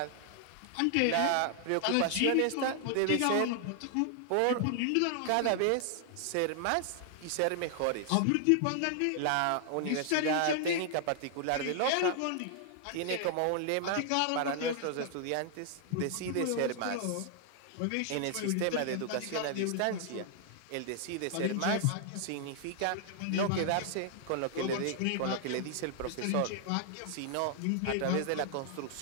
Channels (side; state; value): both; different; correlation 0.00